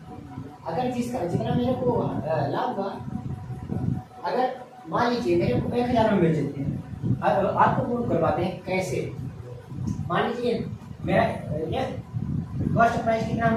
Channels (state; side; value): identical; both; correlation 1.00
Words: अगर जितना मेरे को लाभ हुआ, अगर मान लीजिए मेरे को 1000 में बेच देते हैं, आपको प्रूव करवाते हैं कैसे। मान लीजिए मेरा कॉस्ट प्राइस कितना